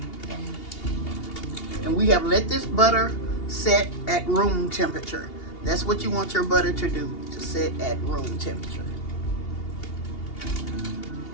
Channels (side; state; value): right; late; 2.8 ms